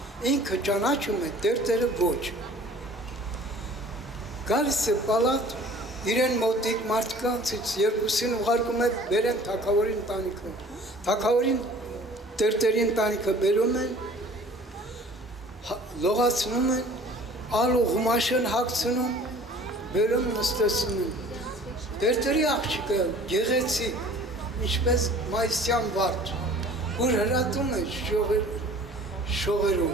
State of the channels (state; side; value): normal; both; correlation 0.48